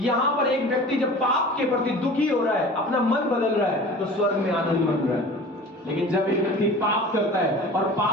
पर एक व्यक्ति जब पाप के प्रति दुखी हो रहा है, अपना मन बदल रहा है, तो स्वर्ग में आनंद मन रहा है। लेकिन जब एक व्यक्ति पाप करता है और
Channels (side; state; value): both; normal; correlation 0.40